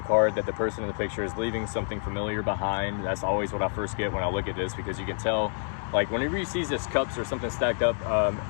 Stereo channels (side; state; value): right; silent; digital silence